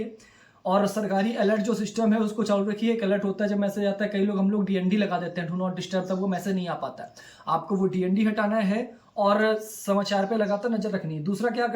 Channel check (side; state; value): both; identical; correlation 1.00